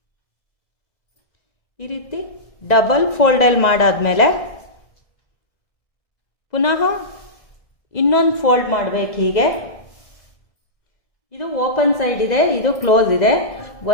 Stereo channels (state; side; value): late; right; 1.9 ms